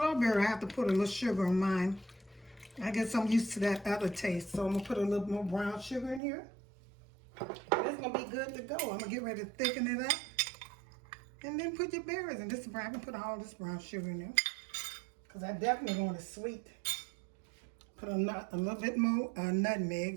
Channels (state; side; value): drops out; left; at 6.2 s